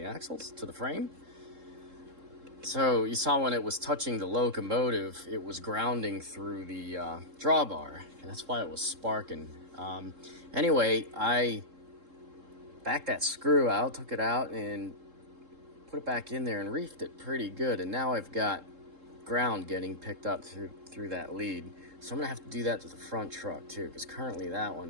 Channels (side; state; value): left; late; 3.7 ms